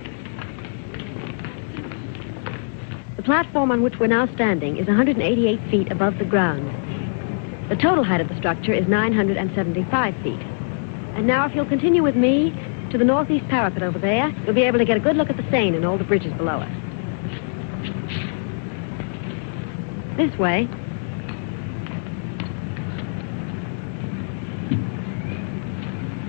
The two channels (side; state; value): right; silent; digital silence